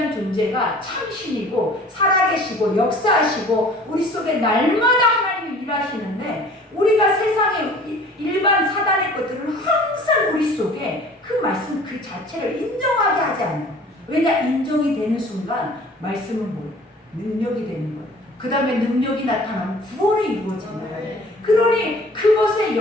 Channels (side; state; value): both; normal; correlation 0.48